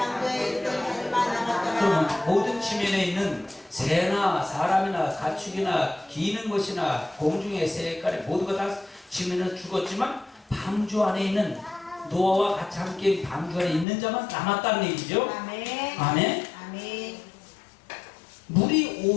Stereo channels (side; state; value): right; drops out; at 13.9 s